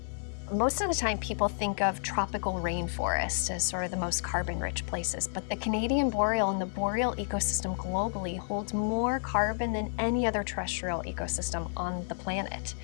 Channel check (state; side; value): silent; right; digital silence